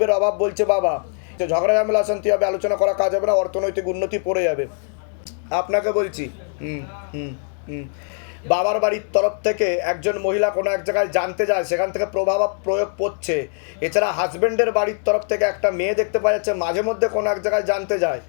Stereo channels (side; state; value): right; silent; 57 dB below the other